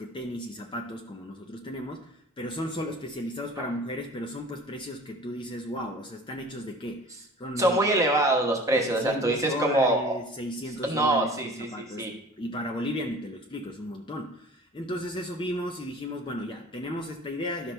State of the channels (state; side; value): normal; both; correlation 0.44